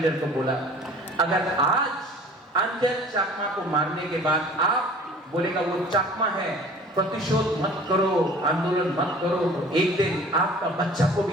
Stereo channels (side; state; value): both; normal; correlation 0.47